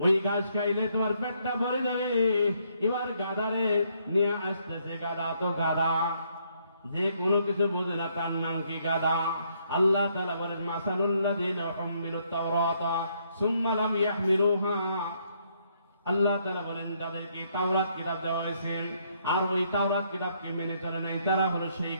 ঘাস খাইলে তোমার পেটটা ভরে যাবে। এবার গাধারে নিয়ে আসতেছে। গাধা তো গাধা, যে কোনো কিছু বোঝে না, তার নাম কি গাধা। আল্লাহ তাআলা বলেন, মাসালুল্লাযীনা হুম্মিলুত তাওরাতা সুম্মা লাম ইয়াহমিলুহা। আল্লাহ তাআলা বলেন, যাদেরকে তাওরাত কিতাব দেওয়া হয়েছে আর ওই তাওরাত কিতাবকে মেনে চলে নাই, তারা হলো সেই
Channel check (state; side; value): inverted; both; correlation -0.71